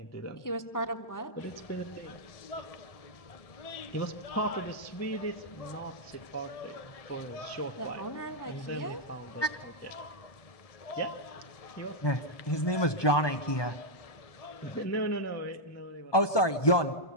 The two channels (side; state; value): right; late; 1.2 ms